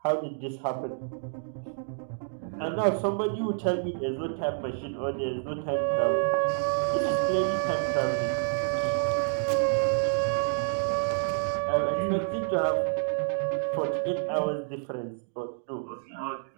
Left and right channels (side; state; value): left; silent; digital silence